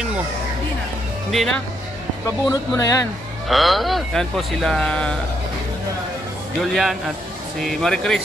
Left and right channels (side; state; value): both; normal; correlation 0.76